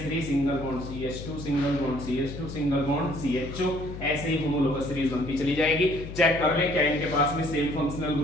single bond CH2 single bond CH2 single bond CHO। ऐसे ही होमोलोगस सीरीज बनती चली जाएगी। चेक कर ले क्या इनके पास में सेम फंक्शनल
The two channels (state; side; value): noise; left; hum, 10 dB below the sound